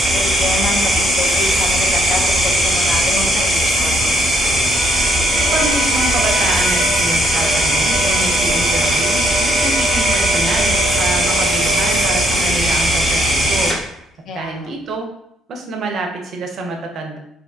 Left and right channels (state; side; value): normal; both; correlation 0.69